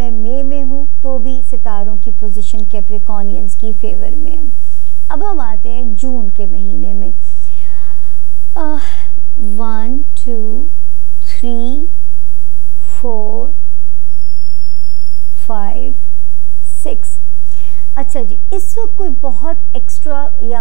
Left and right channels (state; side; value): normal; both; correlation 0.56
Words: मई में हूँ तो भी सितारों की पोजीशन कैप्रिकॉनियंस की फेवर में है। अब हम आते हैं जून के महीने में। 1 2 3 4 5 6। अच्छा जी, इस वक्त कोई बहुत एक्स्ट्रा